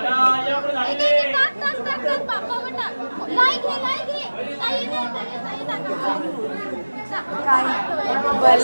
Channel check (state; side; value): inverted; both; correlation -1.00